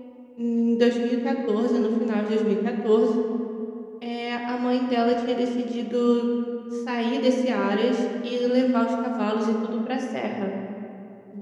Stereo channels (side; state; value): both; identical; correlation 1.00